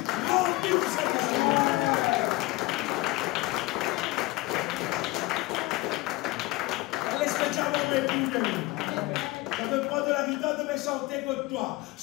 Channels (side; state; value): right; quieter; 20.7 dB